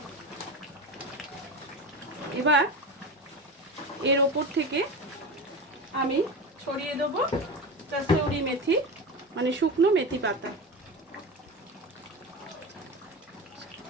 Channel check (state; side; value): normal; both; correlation 0.25